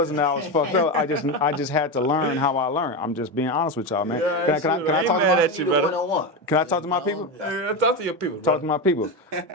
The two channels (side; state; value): both; normal; correlation 0.15